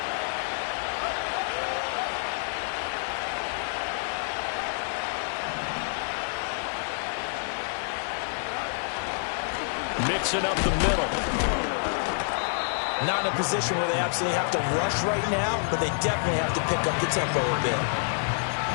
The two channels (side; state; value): right; silent; digital silence